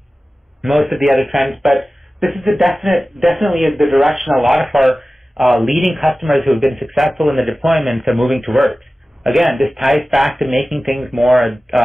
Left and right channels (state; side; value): normal; both; correlation 0.96